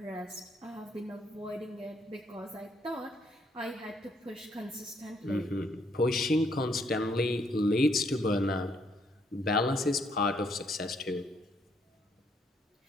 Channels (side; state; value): both; normal; correlation 0.70